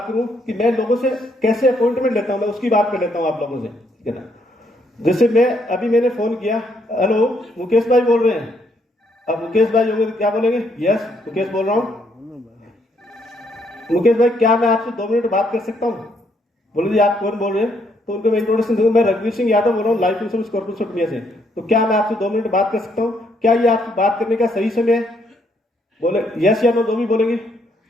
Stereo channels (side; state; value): both; normal; correlation 0.72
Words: करूं कि मैं लोगों से कैसे अपॉइंटमेंट लेता हूं, मैं उसकी बात कर लेता हूं आप लोगों से। ठीक है ना। जैसे मैंने फोन किया, हेलो मुकेश भाई बोल रहे हैं? अब मुकेश भाई होंगे तो क्या बोलेंगे? यस, मुकेश बोल रहा हूँ। मुकेश भाई, क्या मैं आपसे 2 मिनट बात कर सकता हूँ? बोले जी, आप कौन बोल रहे हैं? तो उनको मैं इंट्रोडक्शन दूंगा। मैं रघुवीर सिंह यादव बोल रहा हूँ, life insurance corporation of India से। तो क्या मैं आपसे 2 मिनट बात कर सकता हूँ? क्या ये आपसे बात करने का सही समय है? बोले यस या नो, जो भी बोलेंगे।